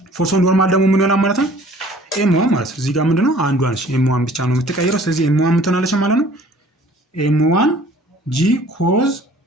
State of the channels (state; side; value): normal; both; correlation 0.52